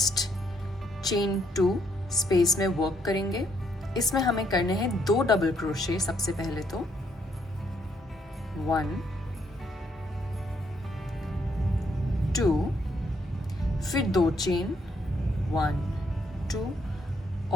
चेन 2 स्पेस में वर्क करेंगे। इसमें हमें करने हैं 2 डबल क्रोशे। सबसे पहले तो 1, 2, फिर 2 चेन, 1, 2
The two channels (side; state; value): both; normal; correlation 0.72